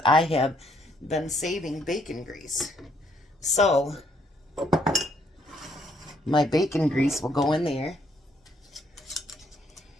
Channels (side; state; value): both; normal; correlation 0.69